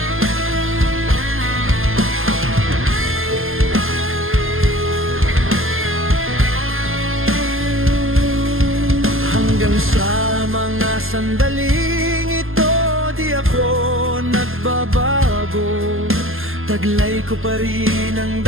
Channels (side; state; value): left; late; 0.60 ms